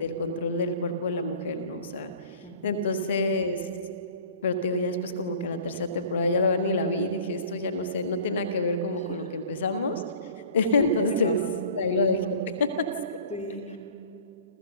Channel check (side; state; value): both; inverted; correlation -0.46